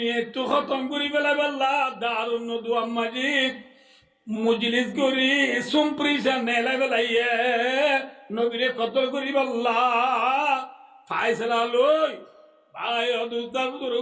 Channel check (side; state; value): both; identical; correlation 1.00